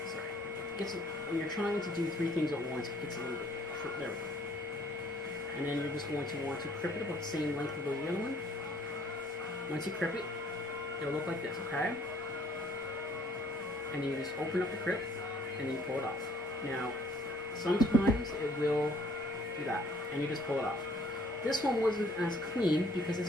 Sorry. When you're trying to do three things at once, it gets a little bit short. There we go. And then you're just going to want to crip it about the same length of the other one. Once you crip it, it'll look like this, okay? And then you just open up the crip, and then you pull it off. Now, sometimes it will do that, and you just pull it off. This one wasn't as clean, because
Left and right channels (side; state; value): both; normal; correlation 0.60